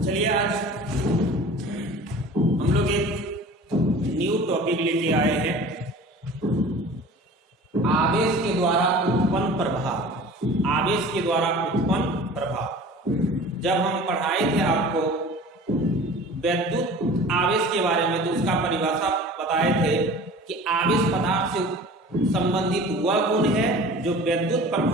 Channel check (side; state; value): both; normal; correlation 0.42